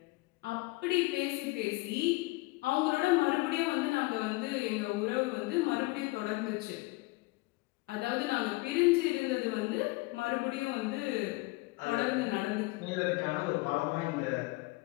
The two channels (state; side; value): quieter; right; 23.2 dB